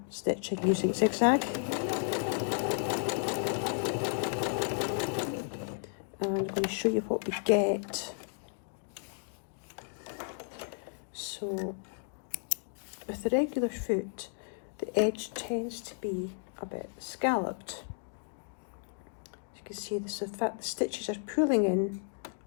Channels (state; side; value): silent; right; digital silence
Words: stitching using zigzag. And I'm going to show you what we get. So with the regular foot, the edge tends to be a bit scalloped. As you can see, the stitches are pulling in